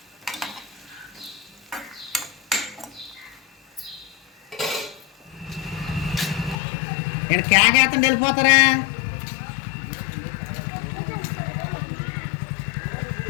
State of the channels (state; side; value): drops out; right; at 6.6 s